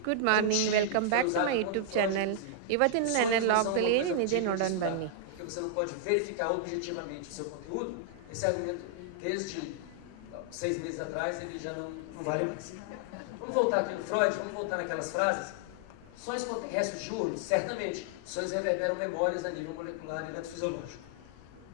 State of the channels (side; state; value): both; different; correlation -0.01